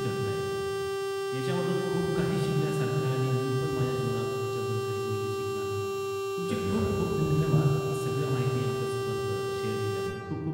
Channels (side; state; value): both; identical; correlation 1.00